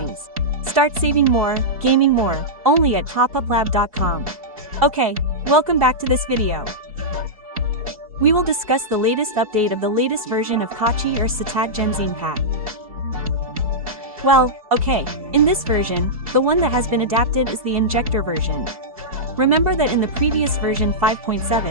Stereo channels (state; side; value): late; left; 2.6 ms